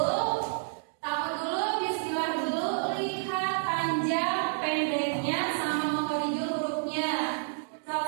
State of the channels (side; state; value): left; silent; digital silence